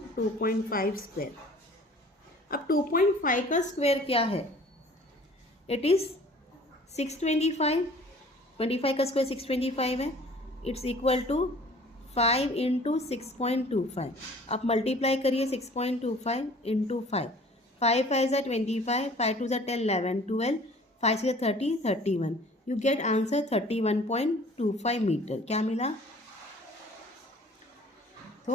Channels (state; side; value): normal; both; correlation 0.50